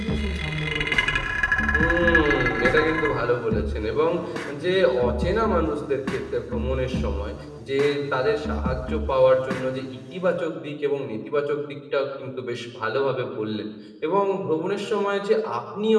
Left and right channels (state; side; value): identical; both; correlation 1.00